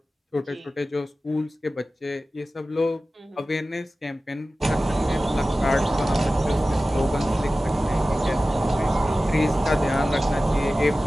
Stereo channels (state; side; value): normal; both; correlation 0.95